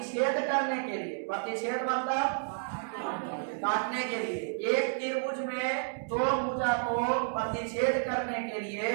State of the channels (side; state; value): left; silent; digital silence